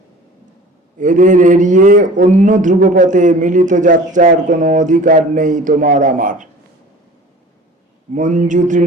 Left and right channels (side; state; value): both; normal; correlation 0.43